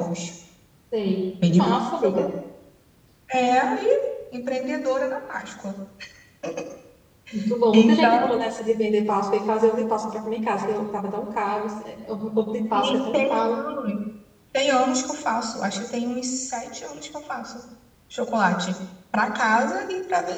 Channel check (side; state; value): both; identical; correlation 1.00